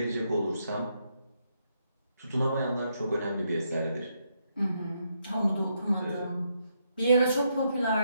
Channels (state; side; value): inverted; both; correlation -0.78